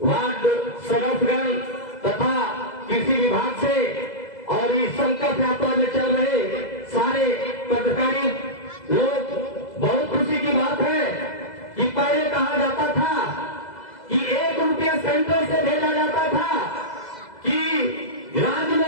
वार्ड सदस्यगण तथा कृषि विभाग से और इस संकल्प यात्रा में चल रहे सारे पदाधिकारी लोग, बहुत खुशी की बात है कि पहले कहा जाता था कि 1 रुपया सेंट्रल से भेजा जाता था, कि राज्य में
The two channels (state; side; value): late; right; 2.0 ms